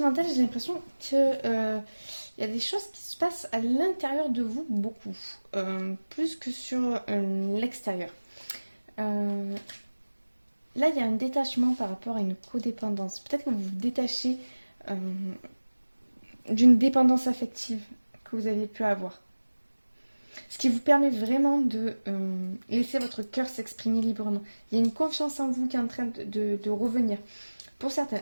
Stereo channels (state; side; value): inverted; both; correlation -1.00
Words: j'ai l'impression que il y a des choses qui se passent à l'intérieur de vous beaucoup, plus que sur l'extérieur. Euh, Là, il y a un détachement par rapport à une codépendance. Peut-être que vous vous détachez euh, d'une dépendance affective que vous aviez pu avoir. Ce qui vous permet vraiment de laisser votre cœur s'exprimer librement. Il y a une confiance en vous qui est en train de revenir. Pour certains,